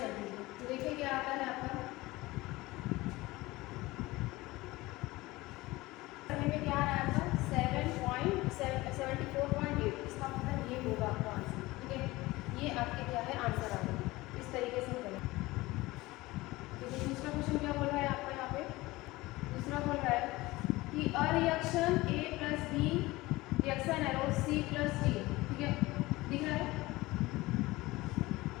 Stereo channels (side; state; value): right; quieter; 20.0 dB